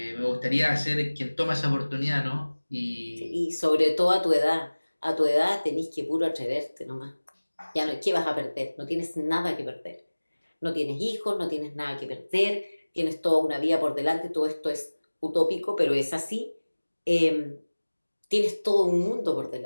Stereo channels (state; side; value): inverted; both; correlation -1.00